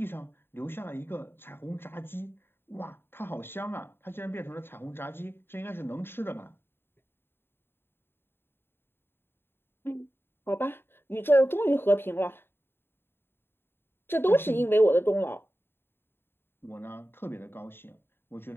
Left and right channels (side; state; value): right; late; 0.11 ms